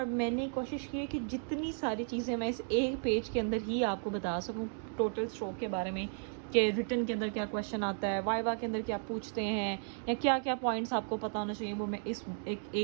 मैंने कोशिश की है कि जितनी सारी चीज़ें मैं इस एक पेज के अंदर ही आपको बता सकूं टोटल स्ट्रोक के बारे में, कि रिटन के अंदर क्या क्वेश्चन आता है, वाइवा के अंदर क्या पूछते हैं, या क्या क्या पॉइंट्स आपको पता होना चाहिए, वो मैं इस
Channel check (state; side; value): silent; left; 55 dB below the other